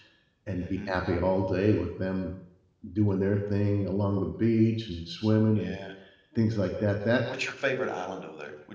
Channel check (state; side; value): identical; both; correlation 1.00